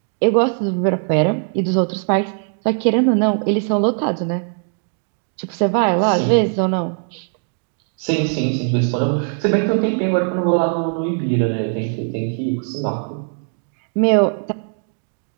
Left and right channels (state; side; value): silent; left; 57 dB below the other